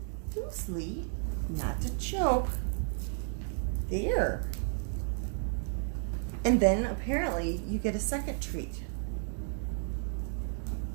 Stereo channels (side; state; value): left; silent; 56 dB below the other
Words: loosely, not to choke, there. And then apparently you get a second treat.